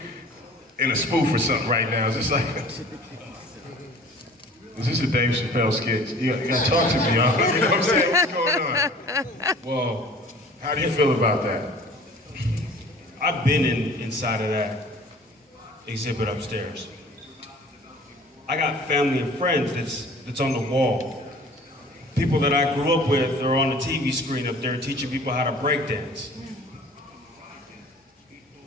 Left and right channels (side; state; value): both; normal; correlation 0.48